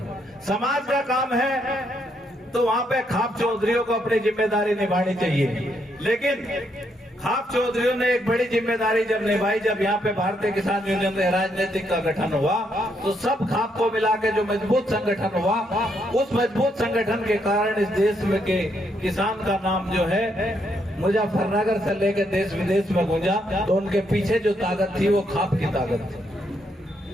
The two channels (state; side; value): normal; both; correlation 0.75